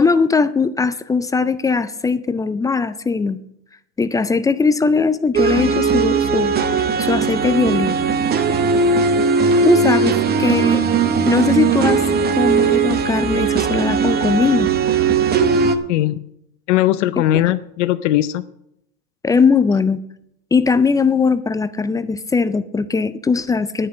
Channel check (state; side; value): normal; both; correlation 0.40